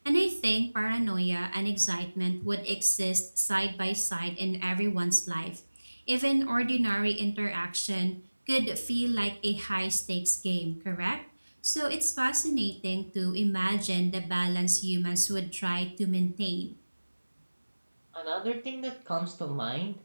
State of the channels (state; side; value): inverted; both; correlation -1.00